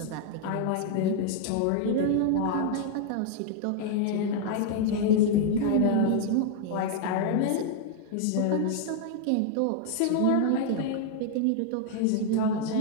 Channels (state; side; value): different; both; correlation 0.00